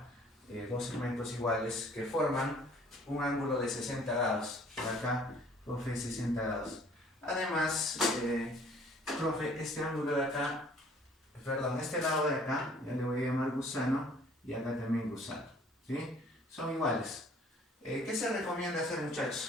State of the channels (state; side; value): normal; both; correlation 0.56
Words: Dos segmentos iguales que forman un ángulo de 60 grados. Por acá, profe, 60 grados. Además, profe, este ángulo de acá, perdón, este lado de acá, ya le voy a llamar gusano, y acá también gusano, ¿sí? Son iguales. ¿Qué se recomienda hacer,